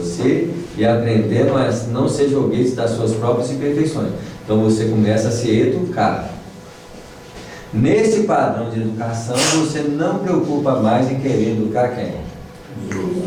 e aprendendo a não ser joguete das suas próprias imperfeições. Então você começa a se educar. Nesse padrão de educação, você não preocupa mais em querer educar quem?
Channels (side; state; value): both; identical; correlation 1.00